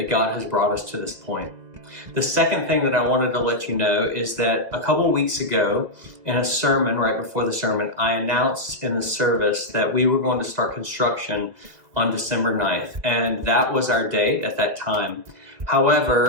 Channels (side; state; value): left; late; 2.1 ms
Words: God has brought us to this point. The second thing that I wanted to let you know is that a couple weeks ago in a sermon, right before the sermon, I announced in the service that we were going to start construction on December 9th, and that was our date at that time.